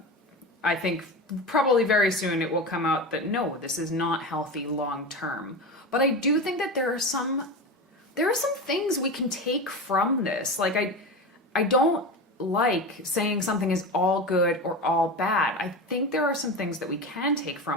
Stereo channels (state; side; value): normal; both; correlation 0.24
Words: think probably very soon it will come out that no, this is not healthy long term. But I do think that there are some things we can take from this. Like, I don't like saying something is all good or all bad. I think there are some things that we can take